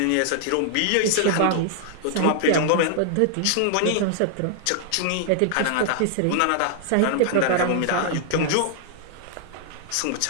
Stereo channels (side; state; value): both; different; correlation 0.00